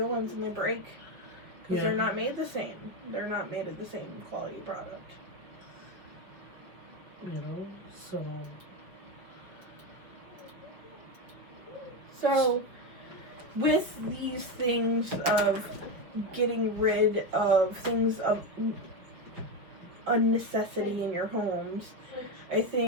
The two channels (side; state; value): left; late; 5.5 ms